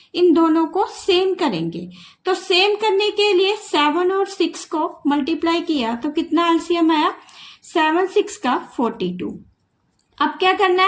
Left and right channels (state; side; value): identical; both; correlation 1.00